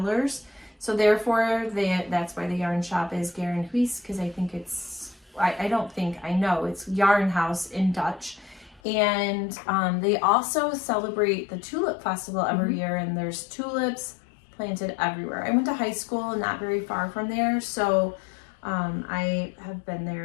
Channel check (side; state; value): right; drops out; at 8.8 s